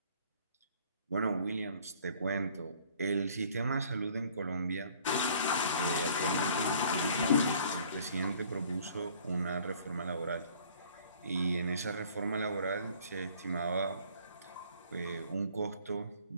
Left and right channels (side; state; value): both; inverted; correlation -0.55